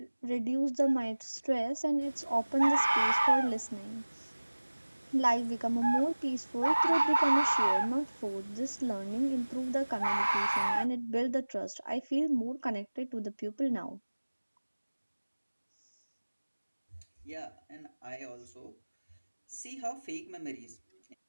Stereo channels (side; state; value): both; inverted; correlation -1.00